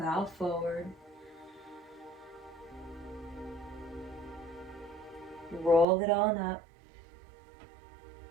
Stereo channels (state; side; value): drops out; left; at 5.9 s